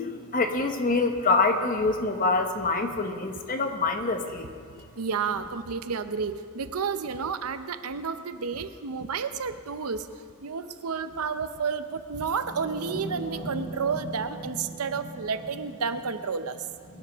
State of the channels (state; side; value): normal; both; correlation -0.09